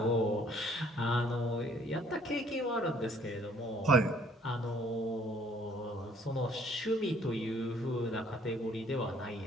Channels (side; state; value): both; normal; correlation 0.60